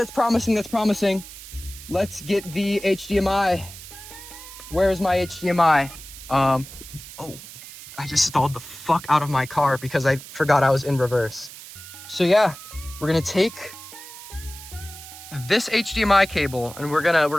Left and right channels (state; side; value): noise; right; hiss, 15 dB below the sound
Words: promising, that's promising. Let's get the HDMI. Where's my HDMI? Oh, I just stalled the fuck out of my car because I forgot I was in reverse. So yeah, we're gonna take this HDMI cable and we're